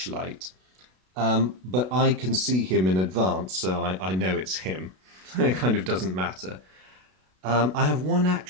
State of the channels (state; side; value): late; left; 32 ms